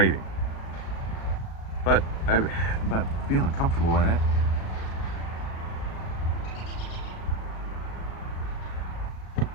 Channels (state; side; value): late; right; 36 ms